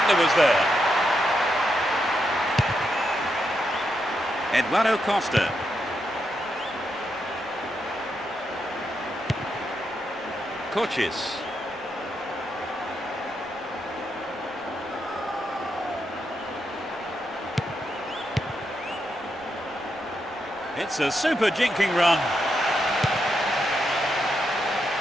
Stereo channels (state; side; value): noise; right; rumble, 27 dB below the sound